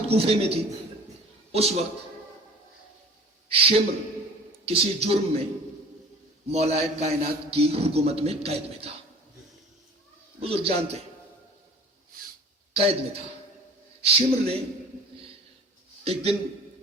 کوفے میں تھی، اس وقت شمر کسی جرم میں مولا کائنات کی حکومت میں قید میں تھا. بزرگ جانتے قید میں تھا. شمر نے ایک دن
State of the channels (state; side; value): normal; both; correlation 0.44